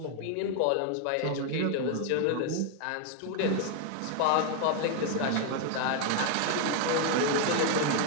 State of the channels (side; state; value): both; different; correlation 0.00